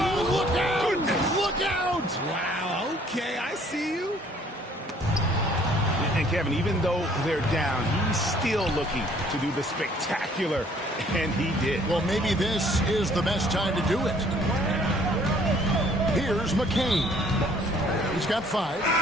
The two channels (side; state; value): both; normal; correlation 0.59